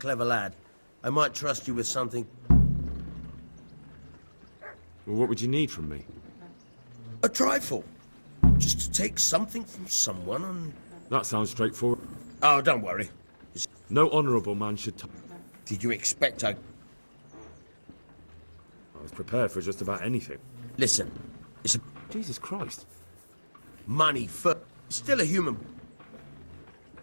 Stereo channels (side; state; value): both; inverted; correlation -1.00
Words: lad, I might trust you with something. Well, what would you need from me? A trifle. Just to take something from someone and... That sounds straightforward. Oh, don't worry. No honourable man should... Did you expect I was prepared for just about anything. Listen, it's a... Jesus Christ. Money for... Still a human...